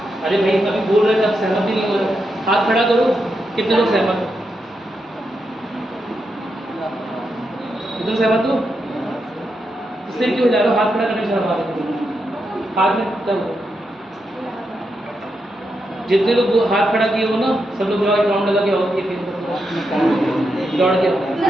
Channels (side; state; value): both; normal; correlation 0.84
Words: अरे भाई अभी बोल रहे थे, अब सहमत ही नहीं हो रहे, हाथ खड़ा करो, कितने लोग सहमत हो? एकदम सहमत हो? सिर क्यों हिला रहे हो? हाथ खड़ा करने से हमारे हाथ में तब जितने लोग हाथ खड़ा किए हो ना, सब लोग एक राउंड लगा के आओ, दौड़ के।